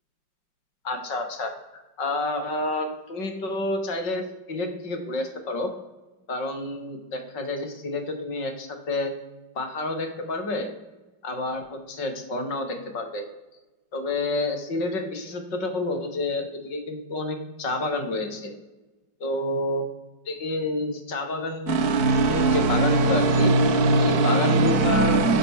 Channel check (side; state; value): right; late; 4.7 ms